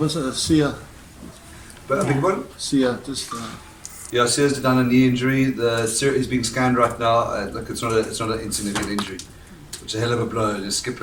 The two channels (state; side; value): identical; both; correlation 1.00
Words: Sia. But a big one? Sia, just. Yeah, Sears done a knee injury. Is being scanned right now. Look, it's not an insignificant injury. It's a hell of a blow to skip